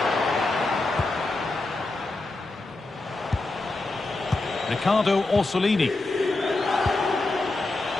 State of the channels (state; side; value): quieter; right; 3.1 dB